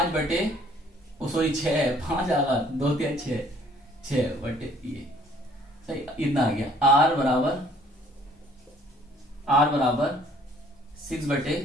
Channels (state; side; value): normal; both; correlation 0.59